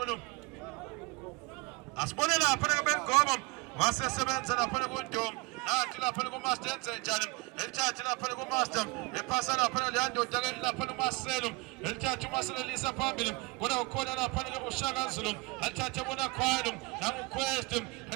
asibone lapha ke bengomo wasesebenza lapha ku Ndom nathi lapha ku Master enze njani elithatha lapha ku Master ephasa lapha leyandoda ke lapha uMarcelo elithatha uMarcelo lisa phambili kodwa ukhona lapha ke uShaka Zulu elithatha bona Khwelo nangu Quest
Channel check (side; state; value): left; quieter; 25.4 dB